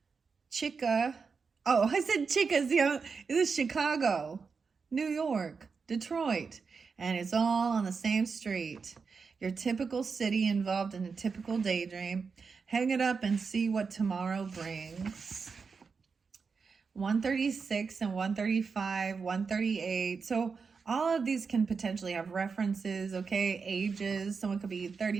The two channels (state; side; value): quieter; left; 5.2 dB